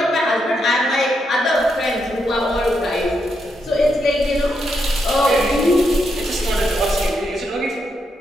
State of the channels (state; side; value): normal; both; correlation 0.81